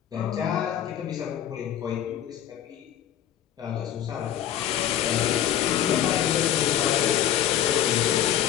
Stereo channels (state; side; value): quieter; right; 11.0 dB